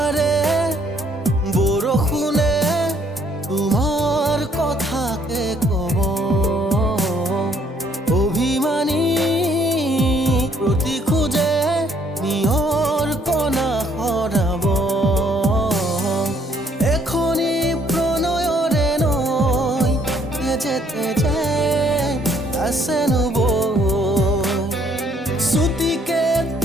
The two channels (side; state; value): both; normal; correlation 0.66